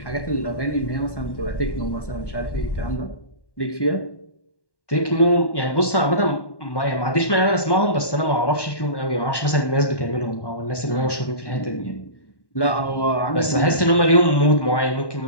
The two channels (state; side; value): late; right; 1.1 ms